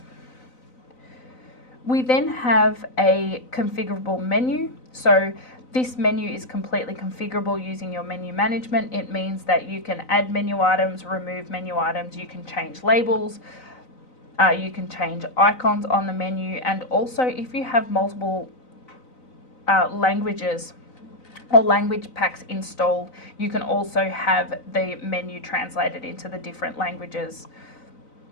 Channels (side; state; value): right; late; 3.9 ms